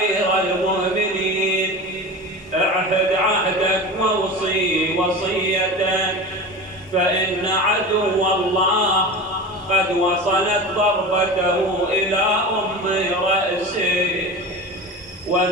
المؤمنين، اعهد عهدك واوصي وصيتك، فإن عدو الله قد وصلت ضربته إلى أم رأسه،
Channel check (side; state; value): both; normal; correlation 0.30